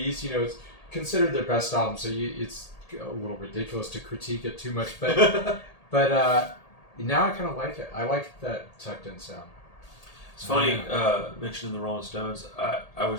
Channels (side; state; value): right; late; 1.8 ms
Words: It's considered their best album, so it's a little ridiculous to critique it too much. But now I kind of like it. I like that tucked in sound. It's funny, mentioning the Rolling Stones, I